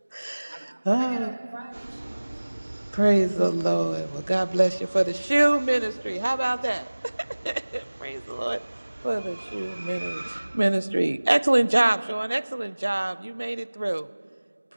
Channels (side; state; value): both; inverted; correlation -1.00